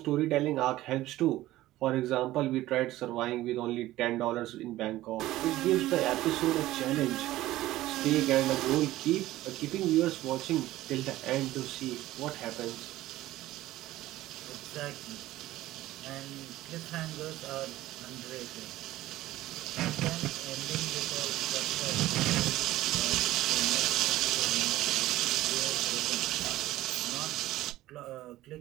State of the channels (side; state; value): left; quieter; 15.9 dB